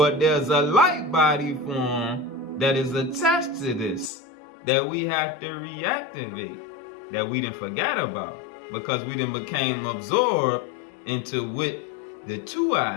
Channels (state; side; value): drops out; right; at 4.1 s